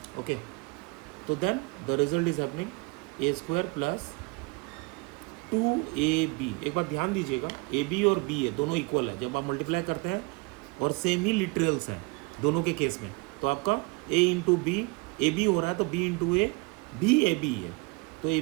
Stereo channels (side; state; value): left; quieter; 28.1 dB